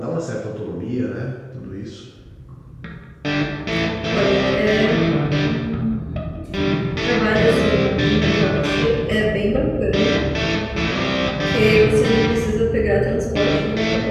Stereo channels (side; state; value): both; identical; correlation 1.00